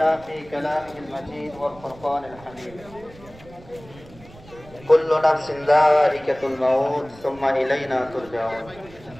في كلامه المجيد والفرقان الحميد كل نفس ذائقة الموت ثم إلينا ترجعون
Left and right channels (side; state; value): right; noise; rumble, 21 dB below the sound